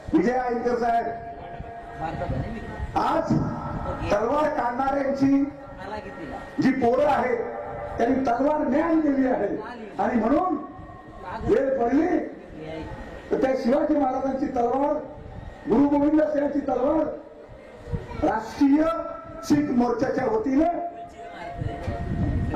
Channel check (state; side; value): identical; both; correlation 1.00